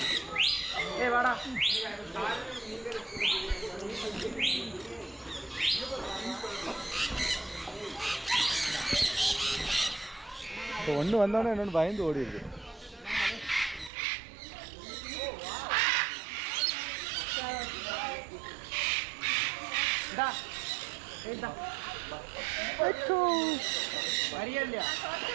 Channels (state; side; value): drops out; left; at 13.9 s